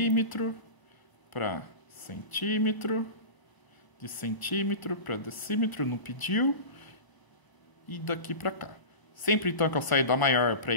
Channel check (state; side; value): late; right; 1.0 ms